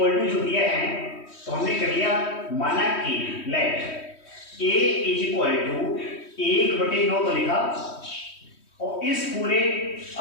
टू जो दिया है, तो हमने कर लिया माना कि let A is equal to 1/9 तो लिखा, और इस पूरे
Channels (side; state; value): right; late; 3.1 ms